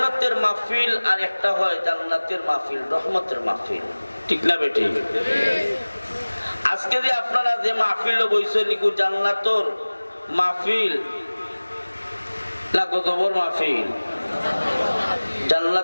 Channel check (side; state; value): both; inverted; correlation -1.00